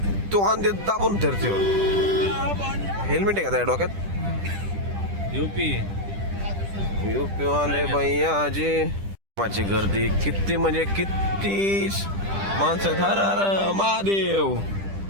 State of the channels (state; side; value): late; left; 10 ms